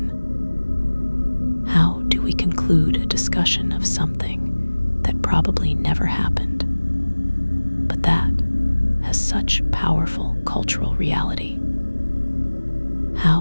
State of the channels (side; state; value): both; inverted; correlation -1.00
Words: How do we conclude a discussion of something that probably never happened, but that has such powerful cultural reality?